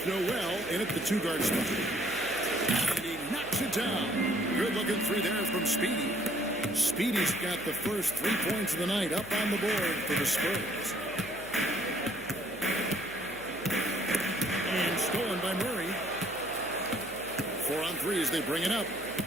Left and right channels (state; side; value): noise; left; hum, 18 dB below the sound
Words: Noel in at the two-guard spot. And he knocks it down. Good-looking three there from Speedy. Speedy's got the first 3 points of the night up on the board for the Spurs. And stolen by Murray. 4 on 3 as they bring it up.